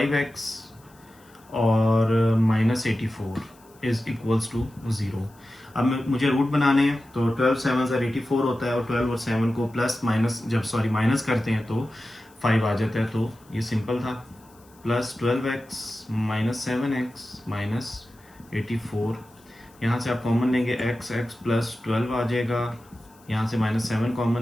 और -84 इज इक्वल्स टू 0। अब मुझे रूट बनाने हैं, तो 12 7 84 होता है, और 12 और 7 को माइनस करते हैं तो 5 आ जाता है। तो ये सिंपल था। +12x - 7x -84, यहाँ से आप कॉमन लेंगे x + 12 आ जाएगा, यहाँ से -7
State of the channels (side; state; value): left; noise; hiss, 29 dB below the sound